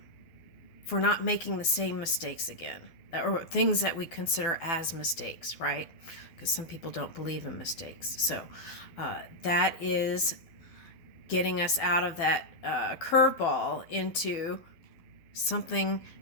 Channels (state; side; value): late; right; 12 ms